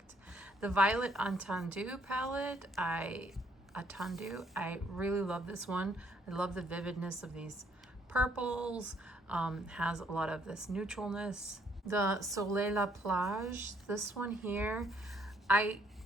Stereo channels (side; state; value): both; normal; correlation 0.67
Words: The Violet Entendu palette, I really love this one. I love the vividness of these purples, has a lot of this neutralness. The Soleil La Plage, this one here, I